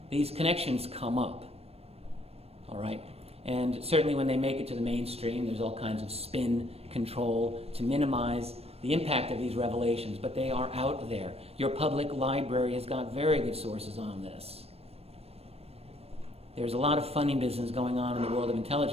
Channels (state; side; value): late; left; 0.29 ms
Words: These connections come up, all right? And certainly when they make it to the mainstream, there's all kinds of spin control to minimize the impact of these revelations, but they are out there. Your public library has got very good sources on this. There's a lot of funny business going on in the world of